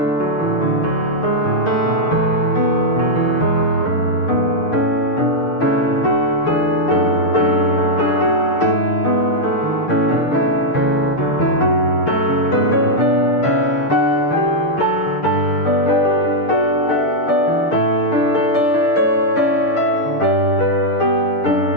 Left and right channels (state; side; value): late; right; 6.6 ms